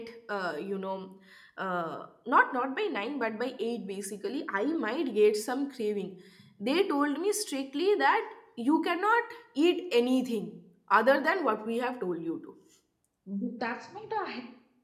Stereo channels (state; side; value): identical; both; correlation 1.00